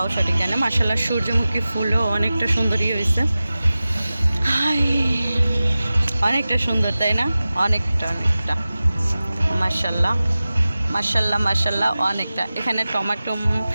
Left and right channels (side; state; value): both; inverted; correlation -0.96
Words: সঠিক জানি। মাশাআল্লাহ সূর্যমুখী ফুলও অনেকটা সুন্দরই হয়েছে, অনেকটা সুন্দর, তাই না? অনেকটা মাশাআল্লাহ অনেকটা। এখানে টমেটো